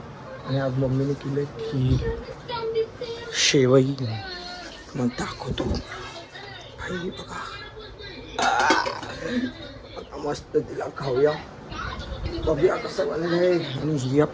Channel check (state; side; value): identical; both; correlation 1.00